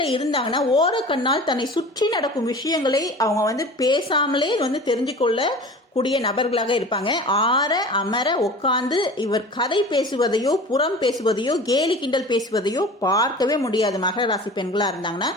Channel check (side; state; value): both; normal; correlation 0.38